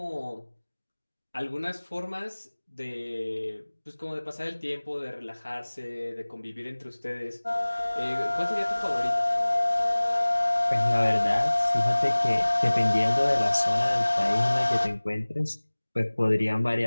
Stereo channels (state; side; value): inverted; both; correlation -1.00